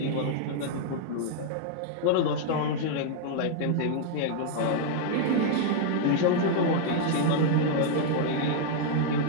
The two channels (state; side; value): different; both; correlation 0.00